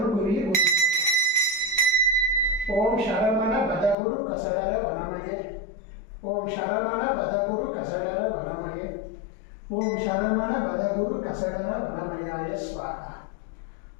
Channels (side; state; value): right; drops out; at 4.0 s